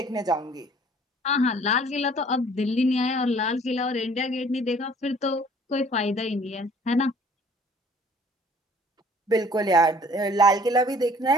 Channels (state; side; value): normal; both; correlation 0.54